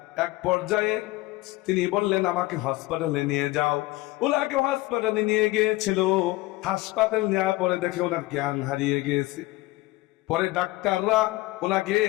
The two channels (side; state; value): right; quieter; 19.6 dB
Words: এক পর্যায়ে তিনি বললেন আমাকে হসপিটালে নিয়ে যাও। ওনাকে হসপিটালে নিয়ে গিয়েছিল। হাসপাতাল নেওয়ার পরে দেখে ওনার জ্ঞান হারিয়ে গিয়েছে। পরে ডাক্তাররা ওনাকে